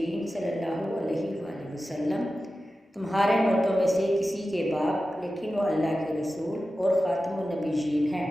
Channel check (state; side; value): normal; both; correlation 0.93